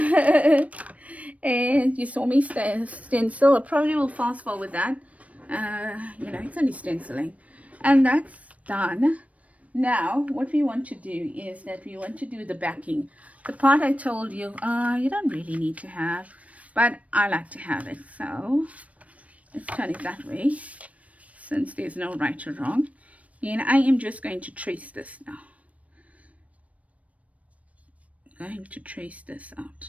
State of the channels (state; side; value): late; left; 0.066 ms